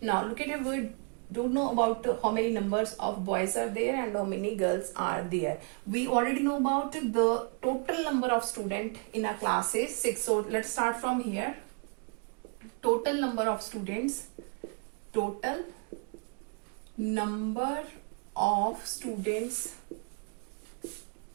Now look at it, we don't know about how many numbers of boys are there and how many girls are there. We already know about the total number of students in a class is 6. So let's start from here. Total number of students, total number of students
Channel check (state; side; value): quieter; left; 35.9 dB